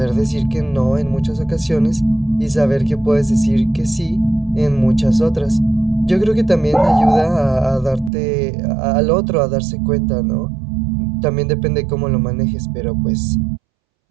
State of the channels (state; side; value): drops out; left; at 8.1 s